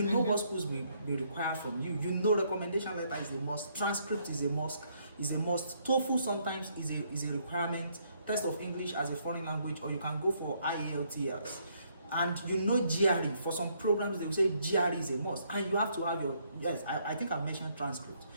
know what schools will require from you. Recommendation letter is a must. Transcript is a must. TOEFL sometimes is a requirement. Test of English as a foreign language, or you can go for IELTS. And GRE, for some programs they will say GRE is a must, and you have to have I think I mentioned transcript.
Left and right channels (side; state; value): both; inverted; correlation -0.70